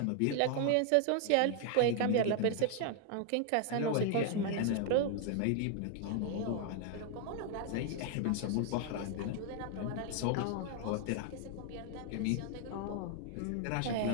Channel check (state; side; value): different; both; correlation 0.00